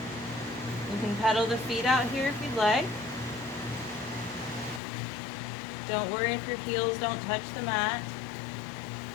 You can pedal the feet out here if you'd like. Don't worry if your heels don't touch the mat.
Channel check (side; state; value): right; drops out; at 4.8 s